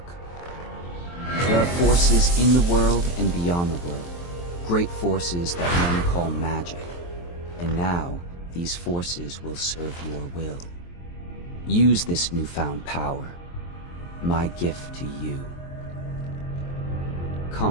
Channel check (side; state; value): right; late; 23 ms